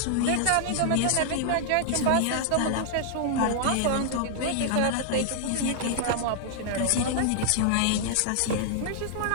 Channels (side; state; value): both; different; correlation -0.01